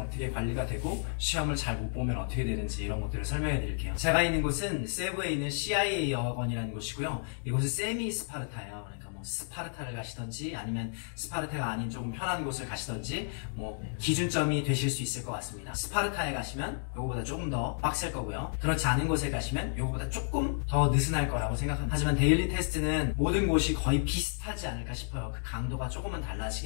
관리가 되고, 시험을 잘 못 보면 어떻게 되는지 이런 것들을 설명해 드릴게요. 제가 있는 곳은 세부에 있는 CIA 어학원이라는 곳이고요. 이곳은 세미 스파르타예요. 스파르타를 가시던지 아니면 스파르타가 아닌 조금 편한 곳을 가시던지 기준점이 되실 수 있을 것 같습니다. 스파르타에 가시면 요거보다 조금 더 빡셀 거고요. 그렇지 않은 곳에 가시면 요거보다 조금 더 느슨할 거라고 생각합니다. 하지만 데일리 테스트는 모든 곳이 거의 비슷하지 않을까 싶어요. 그 강도가 조금은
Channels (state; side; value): silent; right; digital silence